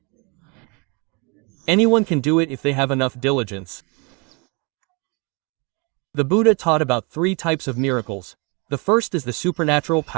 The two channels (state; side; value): quieter; left; 31.1 dB